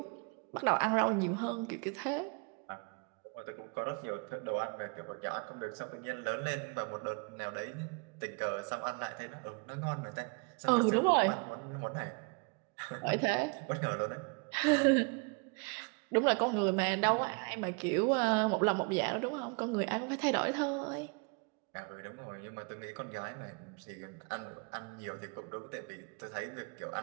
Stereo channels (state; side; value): quieter; left; 33.7 dB